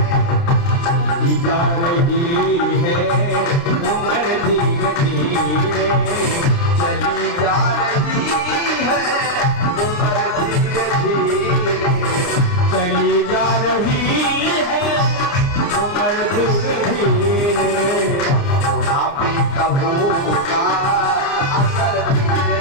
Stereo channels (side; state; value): right; late; 30 ms